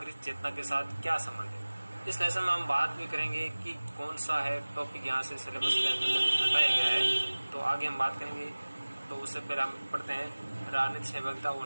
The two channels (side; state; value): both; inverted; correlation -1.00